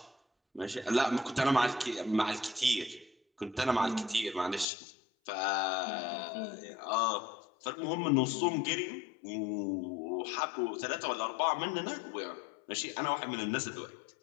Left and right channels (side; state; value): right; drops out; at 4.7 s